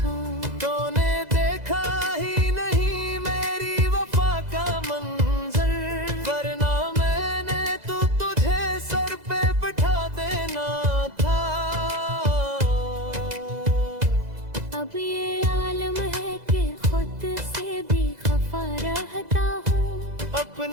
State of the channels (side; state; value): left; late; 2.0 ms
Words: तूने देखा ही नहीं मेरी वफा का मंजर, वरना मैंने तो तुझे सर पे बिठा देना था। अब ये आलम है कि खुद से भी खफा रहता हूँ,